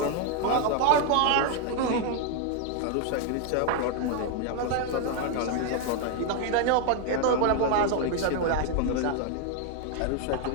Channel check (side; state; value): both; different; correlation 0.01